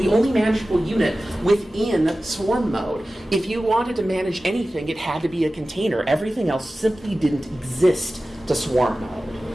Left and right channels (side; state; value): both; normal; correlation 0.95